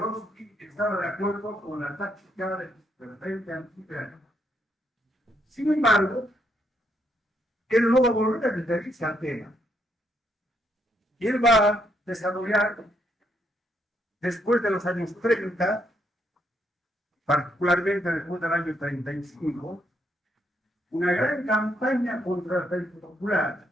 estaba de acuerdo con la táctica del frente antiimperial. Sin embargo, él no va a volver a referirse al tema. Y él va a desarrollar, después de los años 30, particularmente después del año 35, una gran campaña contra el Frente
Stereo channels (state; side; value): normal; both; correlation 0.75